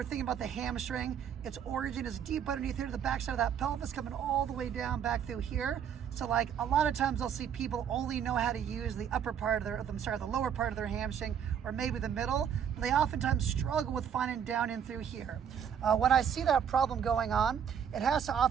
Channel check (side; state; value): left; quieter; 8.3 dB